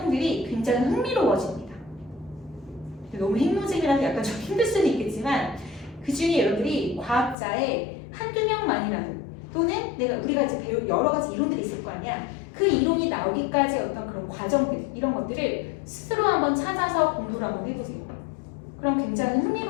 굉장히 흥미로워집니다. 너무 핵노잼이라서 약간 좀 힘들 수는 있겠지만 그 중에 여러분들이 과학자의 한두 명만이라도 또는 우리가 이제 배운 여러 가지 이론들이 있을 거 아니야. 그 이론이 나오기까지의 어떤 그런 과정들 이런 것들을 스스로 한번 찾아서 공부를 한번 해보세요. 그럼 굉장히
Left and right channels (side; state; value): right; drops out; at 7.4 s